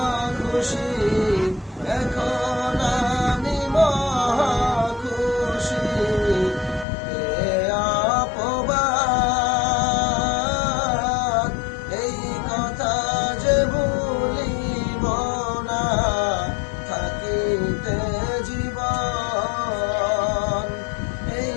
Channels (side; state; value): right; drops out; at 6.9 s